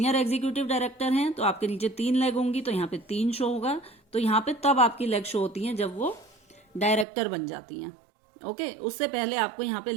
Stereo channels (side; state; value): left; drops out; at 7.1 s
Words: एग्जीक्यूटिव डायरेक्टर हैं तो आपके नीचे 3 लेग होंगी तो यहाँ पे 3 शो होगा। तो यहाँ पे तब आपकी लेग शो होती हैं जब वो डायरेक्टर बन जाती हैं। ओके, उससे पहले आपको यहाँ पे